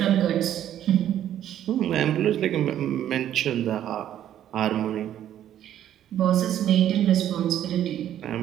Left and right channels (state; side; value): quieter; left; 11.1 dB